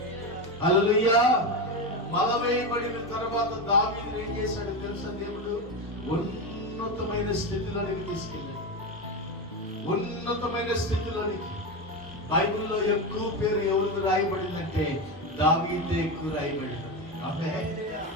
హల్లెలూయా. బలవేయబడిన తర్వాత దావీదు ఏం చేశాడు తెలుసా? దేవుడు ఉన్నతమైన స్థితిలోనికి తీసుకెళ్ళాడు. ఉన్నతమైన స్థితిలోనికి బైబిల్లో ఎక్కువ పేరు ఎవరికి రాయబడిందంటే దావీదే ఎక్కువ రాయబడింది.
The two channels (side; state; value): both; normal; correlation 0.16